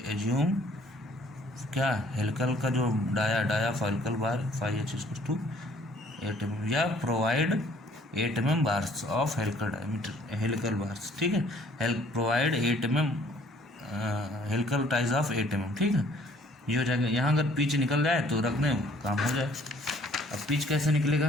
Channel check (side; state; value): both; normal; correlation 0.59